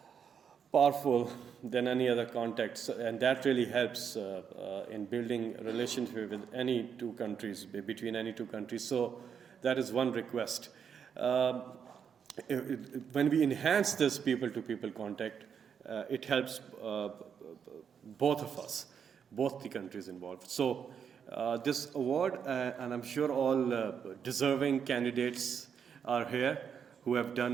powerful than any other contacts, and that really helps in building a relationship with any two countries, between any two countries. So that is one request. When we enhance this people-to-people contact, it helps both of us, both the countries involved. So This award, and I'm sure all deserving candidates are here who have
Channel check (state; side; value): quieter; left; 7.3 dB